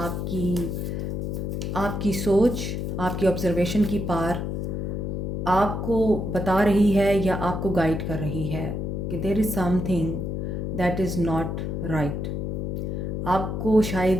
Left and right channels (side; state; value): left; noise; hum, 2 dB below the sound